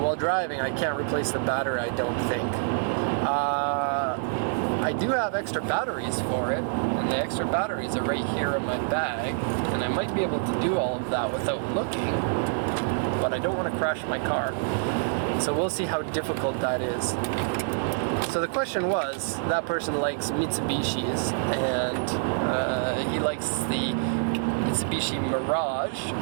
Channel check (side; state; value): left; silent; digital silence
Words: driving, I can't replace the battery, I don't think. I do have extra batteries for it, and the extra batteries are right here in my bag, and I might be able to do all of that without looking, but I don't want to crash my car. So we'll see how difficult that is. So the question was, that person likes Mitsubishis, and he likes the Mitsubishi Mirage